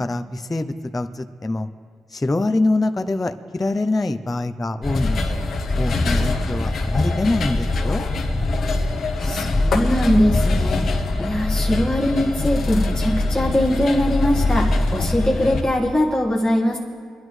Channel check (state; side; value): normal; both; correlation 0.94